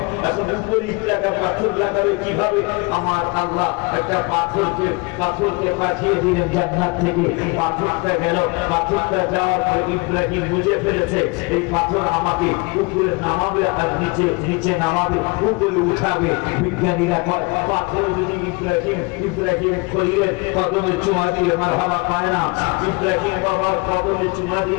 উপরে ইটটা পাথর লাগাবে কিভাবে আমার আল্লাহ একটা পাথরকে পাঠিয়ে দিলেন জান্নাত থেকে পাথরটা গেল পাথরটা যাওয়ার পরে ইব্রাহিম বুঝে ফেলেছে এই পাথর আমাকে উপরে নামাবে আর নিচে নামাবে উপরে উঠাবে বিজ্ঞানীরা কয় পাথর যদি ইব্রাহিম খলিলের কদমে চুমা দিয়ে মারহাবা পায় না ইব্রাহিম বাবার কদমে চুমা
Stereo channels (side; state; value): right; quieter; 27.5 dB